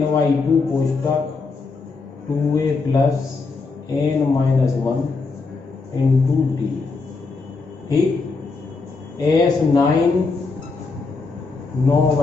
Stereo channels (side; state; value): right; quieter; 4.2 dB